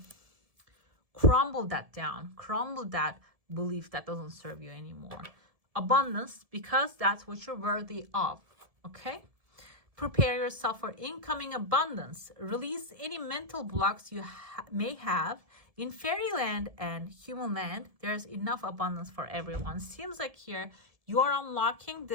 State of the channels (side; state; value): left; late; 1.7 ms